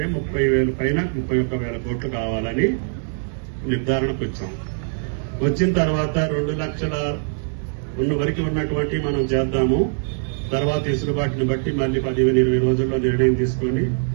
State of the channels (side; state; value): left; silent; digital silence